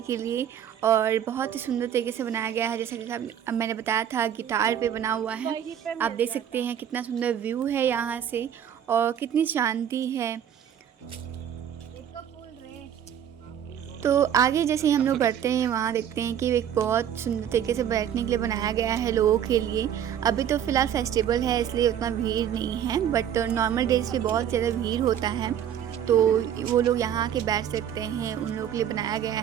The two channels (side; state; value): left; quieter; 9.5 dB